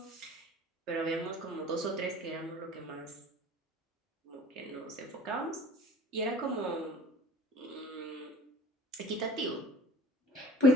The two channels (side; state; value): both; normal; correlation 0.46